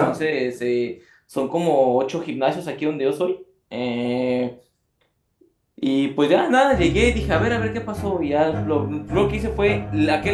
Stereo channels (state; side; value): identical; both; correlation 1.00